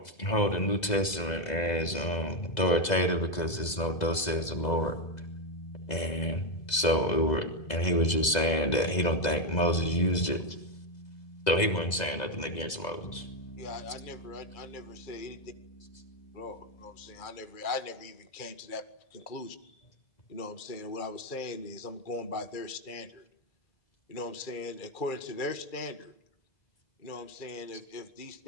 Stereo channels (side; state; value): right; late; 2.0 ms